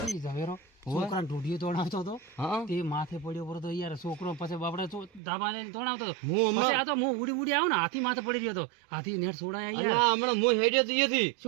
ઝવેરો છોકરાને ઢૂંઢીએ તોડાવતો હતો હા તે માથે પડ્યો પડ્યો તો યાર છોકરો પછી બાપડે ધાબા લઈને તોડાવતો હતો હું હમણાં પછી આ તો હું ઉડી ઉડી આવ્યો ને હાથી માથે પડી ગયો હતો હાથી નેટ છોડાયા યાર અલ્યા હમણાં હું હેડ્યો તો અહીંયાથી.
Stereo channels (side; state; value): left; drops out; at 5.2 s